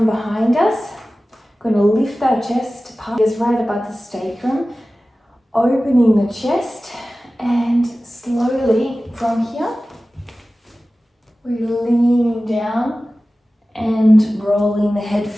behind us. Going to lift our chest is right above the sacrum, opening the chest, and slowly from here we're leaning down and rolling the head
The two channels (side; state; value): both; normal; correlation 0.96